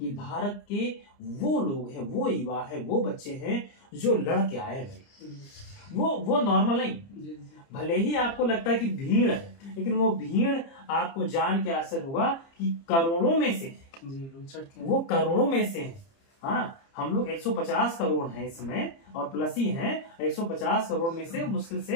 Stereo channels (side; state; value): right; late; 30 ms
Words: भारत के वो लोग हैं, वो युवा है, वो बच्चे हैं जो लड़ के आए भाई, वो नॉर्मल नहीं। भले ही आपको लगता है कि भीड़ है, लेकिन वो भीड़ आपको जान के असर होगा कि करोड़ों में से, वो करोड़ों में से है। हाँ, हम लोग 150 करोड़ हैं इसमें और प्लस ही हैं। 150 करोड़ में से मुश्किल से